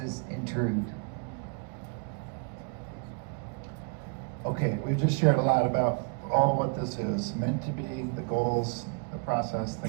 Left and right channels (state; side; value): quieter; left; 36.9 dB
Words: intrude. Okay, we've just shared a lot about all what this is meant to be, the goals, the process,